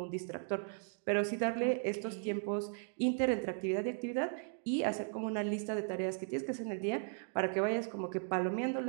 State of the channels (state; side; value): silent; left; 53 dB below the other